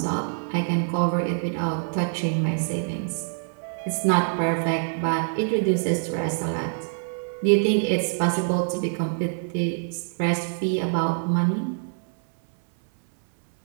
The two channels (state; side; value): silent; left; 62 dB below the other